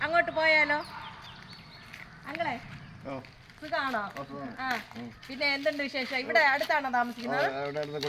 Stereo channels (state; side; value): identical; both; correlation 1.00